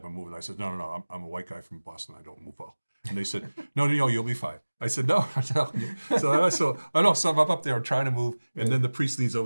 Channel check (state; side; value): inverted; both; correlation -1.00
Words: and move. And I said, no, I'm a white guy from Boston. I don't move well. And they said, no, you'll be fine. I said, no, I'm telling you. So I'm up there, I'm trying to move. And then the priest leans